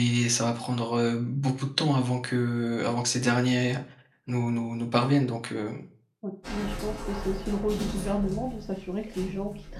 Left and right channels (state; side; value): identical; both; correlation 1.00